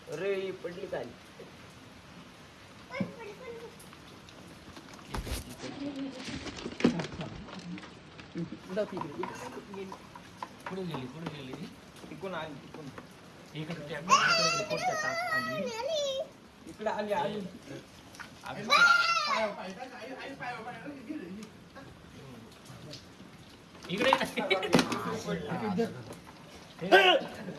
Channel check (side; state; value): both; identical; correlation 1.00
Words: अरे ही पडली काय. पुढे गेली तिकून आली तिकून. इकडे त्या कोणत्या टाक आली. इकडे आली आली. इकडे